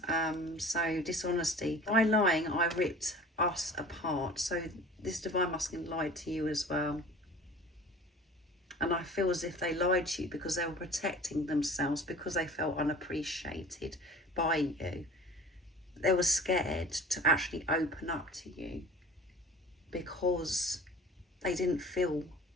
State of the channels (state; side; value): normal; both; correlation 0.42